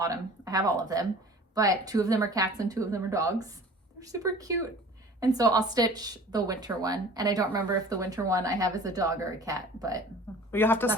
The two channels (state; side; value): normal; both; correlation 0.45